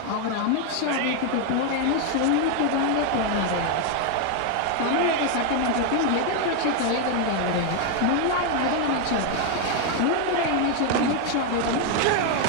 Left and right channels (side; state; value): both; different; correlation 0.01